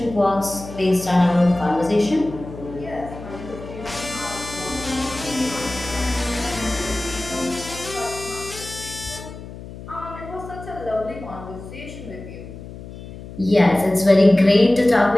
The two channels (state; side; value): noise; left; hum, 13 dB below the sound